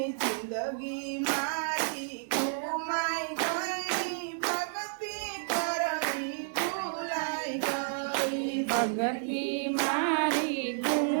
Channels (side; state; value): left; silent; digital silence